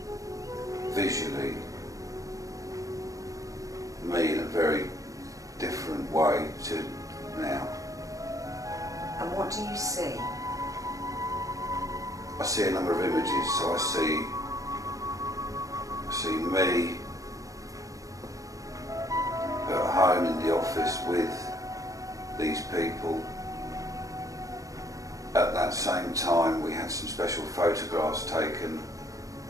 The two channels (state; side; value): late; left; 0.16 ms